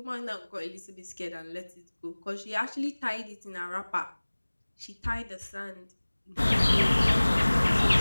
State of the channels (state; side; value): inverted; both; correlation -1.00